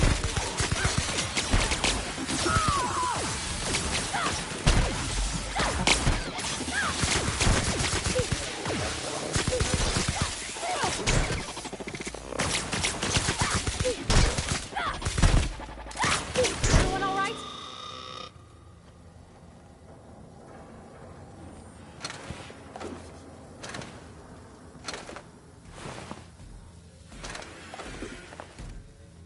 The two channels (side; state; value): both; identical; correlation 1.00